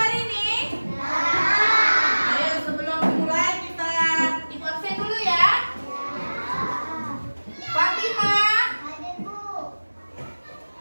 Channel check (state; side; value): inverted; both; correlation -1.00